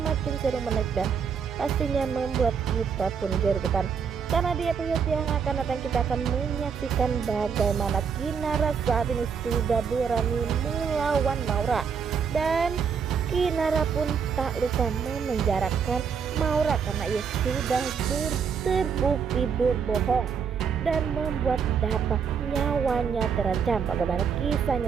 seru, menarik dan pastinya membuat kita pun gergetan. Karena di episode yang akan datang kita akan menyaksikan bagaimana Kinara saat ini sudah berani melawan Maura. Dan Kinara pun tak lupa memenjarakan Maura karena ia sudah terbukti berbohong dan membuat Dapa nyawanya terancam. Bagaimana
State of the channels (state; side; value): quieter; left; 6.6 dB